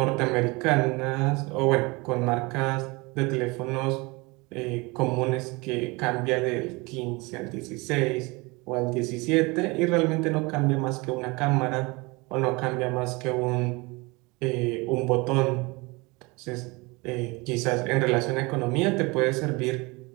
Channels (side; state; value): left; quieter; 25.5 dB